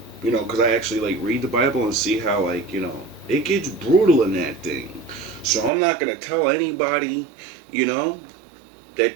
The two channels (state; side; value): drops out; left; at 5.7 s